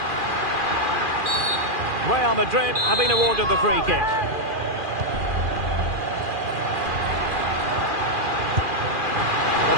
Real Madrid have been awarded the free kick. Well,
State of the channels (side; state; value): left; late; 2.4 ms